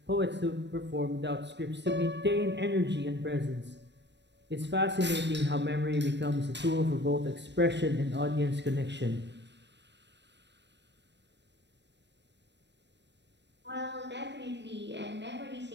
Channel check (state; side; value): late; left; 0.51 ms